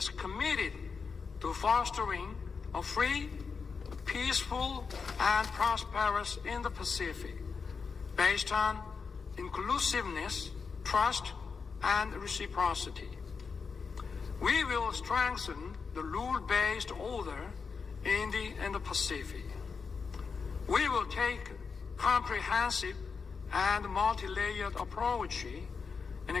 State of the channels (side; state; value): right; quieter; 5.3 dB